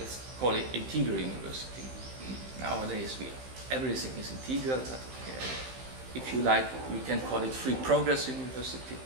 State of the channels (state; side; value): late; left; 15 ms